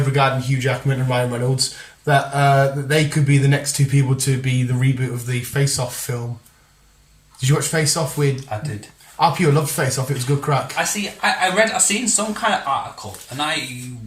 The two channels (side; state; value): both; identical; correlation 1.00